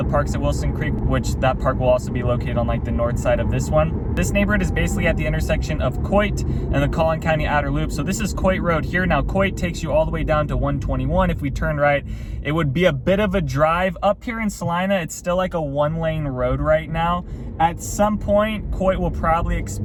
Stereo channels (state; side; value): identical; both; correlation 1.00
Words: Parks at Wilson Creek, which that park will also be located on like the north side of this one. This neighborhood is basically at the intersection of Coit and the Collin County outer loop. So this is Coit Road here. Now Coit takes you all the way down to 121. If we turn right, it would be a bit of a drive. Up here in Celina, it's still like a one-lane road right now. At some point, Coit will probably